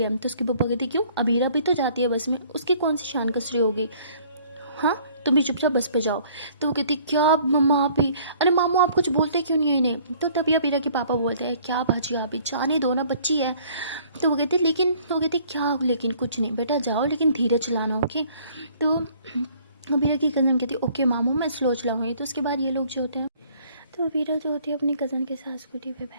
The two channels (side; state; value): both; inverted; correlation -0.57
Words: है। तो उसके पापा कहती क्यों, अबीरा भी तो जाती है बस में, उसकी कौन सी शान कसरी होगी, हाँ तुम भी चुपचाप बस पे जाओ। तो वो कहती क्या मम्मा आप ही, अरे मामू आप कुछ बोलते क्यों नहीं है इन्हें। तो तभी अबीरा के पापा बोलते हैं क्या भाजी आप ही जाने दो ना, बच्ची है। तो वो कहती लेकिन, वो कहती क्या लेकिन, कुछ नहीं बेटा जाओ लेकिन धीरे चलाना ओके। तो अबीरा की कज़न कहती है ओके मामू मैं स्लो चलाऊँगी। तो उसके बाद ये लोग जो होते हैं, तो अबीरा जो होती है अपनी कज़न के साथ स्कूटी पे